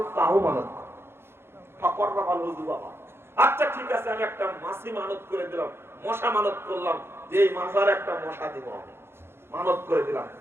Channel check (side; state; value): left; late; 0.12 ms